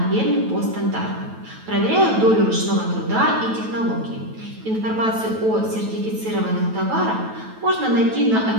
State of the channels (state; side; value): late; left; 9.2 ms